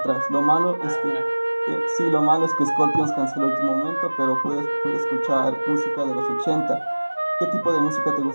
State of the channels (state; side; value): inverted; both; correlation -1.00